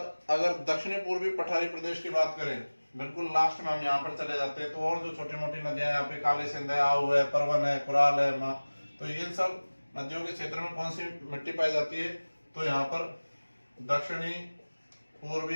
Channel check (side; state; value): both; inverted; correlation -1.00